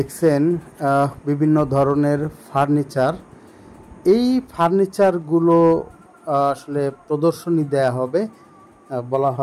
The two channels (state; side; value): identical; both; correlation 1.00